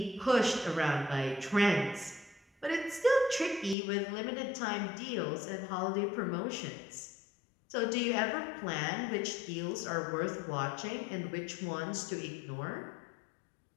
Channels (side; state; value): right; drops out; at 3.8 s